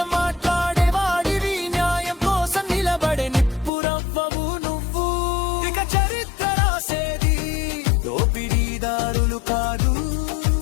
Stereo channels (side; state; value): right; drops out; at 3.7 s